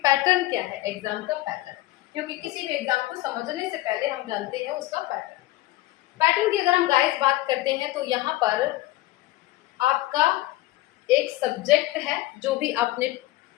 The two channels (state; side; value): quieter; right; 17.4 dB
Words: क्या है, एग्जाम का पैटर्न, क्योंकि किसी भी एग्जाम को समझने से पहले हम जानते हैं उसका पैटर्न। पैटर्न की अगर हम गाइस बात करते हैं तो यहाँ पर आपका एक सब्जेक्ट है जो भी आपने